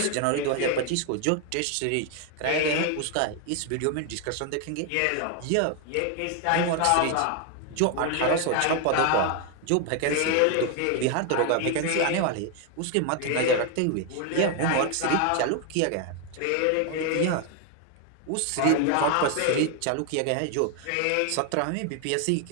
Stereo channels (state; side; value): different; both; correlation 0.01